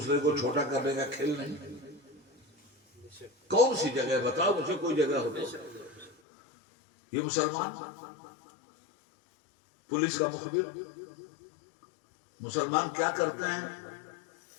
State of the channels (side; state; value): right; drops out; at 6.2 s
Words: کو چھوٹا کرنے کا کھیل نہیں؟ کون سی جگہ بتاؤ مجھے، کوئی جگہ ہو تو. یہ مسلمان پولیس کا مخبر. مسلمان کیا کرتے ہیں؟